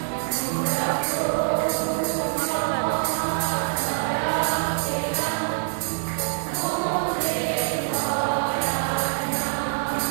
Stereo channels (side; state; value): left; silent; digital silence